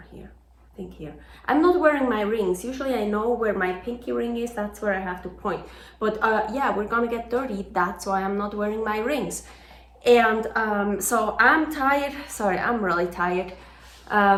here. I think here. I'm not wearing my rings. Usually I know where my pinky ring is. That's where I have to point. But yeah, we're gonna get dirty. That's why I'm not wearing my rings. And so I'm tired. Sorry, I'm really tired.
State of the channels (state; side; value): identical; both; correlation 1.00